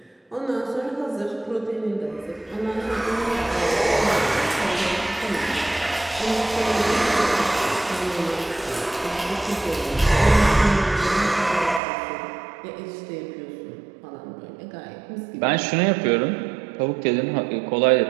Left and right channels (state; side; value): drops out; left; at 11.8 s